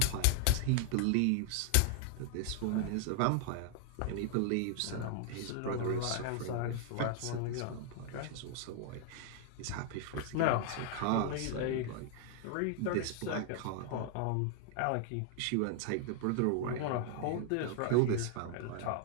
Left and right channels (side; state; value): both; different; correlation 0.00